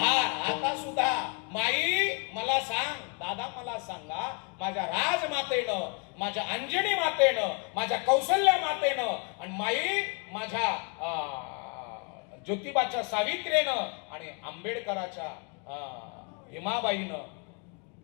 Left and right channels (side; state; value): right; quieter; 36.5 dB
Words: आता सुद्धा माई मला सांग, दादा मला सांगा, माझ्या राजमातेनं, माझ्या अंजनी मातेनं, माझ्या कौशल्या मातेनं, आणि माई माझ्या ज्योतिबाच्या सावित्रीनं आणि आंबेडकराच्या भीमाबाईनं